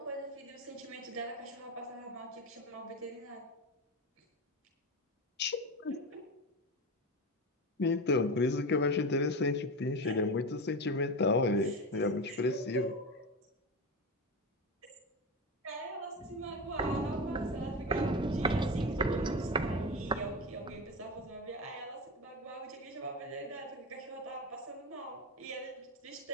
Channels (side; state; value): both; normal; correlation 0.21